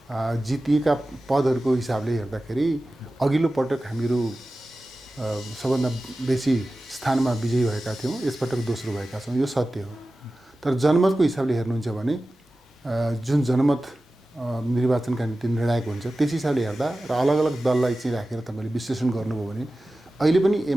जितिएका पदहरूको हिसाबले हेर्दाखेरि अघिल्लो पटक हामीहरू सबभन्दा बेसी स्थानमा विजयी भएका थियौँ, यसपटक दोस्रो भएका छौँ, यो सत्य हो। तर जनमतको हिसाबले हेर्नुहुन्छ भने जुन जनमत निर्वाचनका निम्ति निर्णायक हुन्छ त्यस हिसाबले हेर्दा र अलग अलग दललाई चाहिँ राखेर तपाईँले विश्लेषण गर्नुभयो भने अहिले पनि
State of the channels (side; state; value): both; normal; correlation 0.95